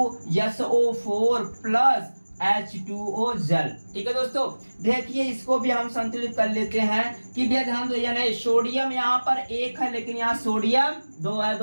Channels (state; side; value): inverted; both; correlation -1.00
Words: प्लस H2O जल। ठीक है दोस्तों, देखिए इसको भी हम संतुलित कर लेते हैं कि भैया ध्यान दो, यानी सोडियम यहाँ पर 1 है लेकिन यहाँ सोडियम 2 है